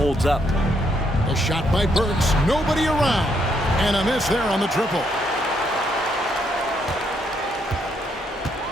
up. A shot by Burks. Nobody around. And a miss there on the triple.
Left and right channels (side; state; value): both; normal; correlation 0.74